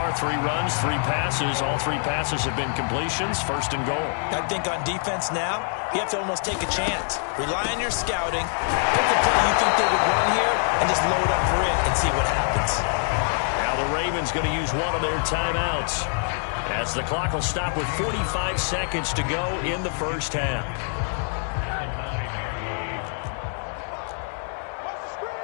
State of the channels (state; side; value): silent; right; 56 dB below the other